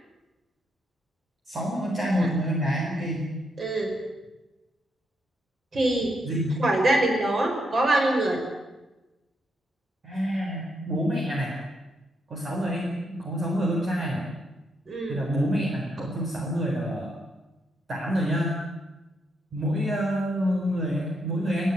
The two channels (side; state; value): both; normal; correlation 0.78